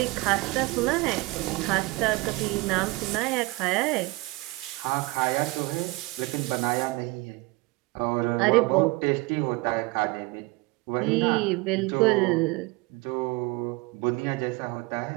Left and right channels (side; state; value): left; quieter; 23.2 dB